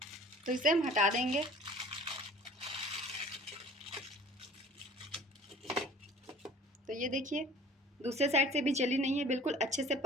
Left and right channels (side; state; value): both; normal; correlation 0.47